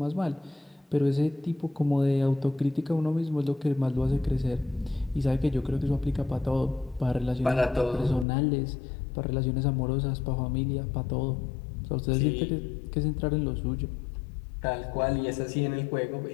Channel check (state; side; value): drops out; right; at 8.2 s